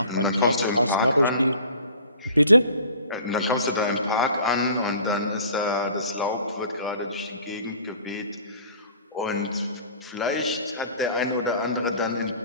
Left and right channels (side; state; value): both; inverted; correlation -0.47